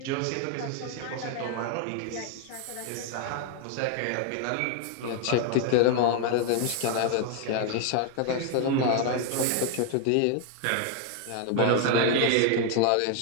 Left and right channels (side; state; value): both; different; correlation 0.00